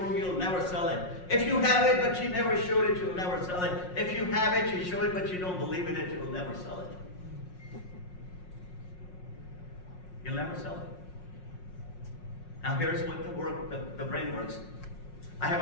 you'll never sell it. If you have it, but you never showed it, you'll never sell it. If you have it, you show it, but you don't believe in it, you'll never sell it. You'll never sell it. Now here's what the brain works. I have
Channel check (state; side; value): late; right; 5.5 ms